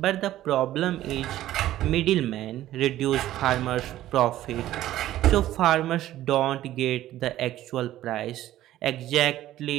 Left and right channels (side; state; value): left; quieter; 13.9 dB